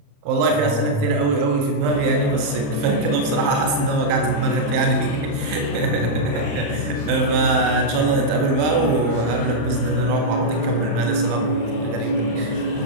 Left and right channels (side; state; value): left; late; 27 ms